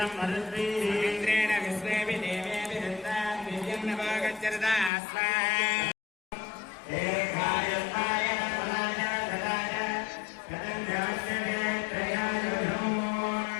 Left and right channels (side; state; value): right; drops out; at 4.9 s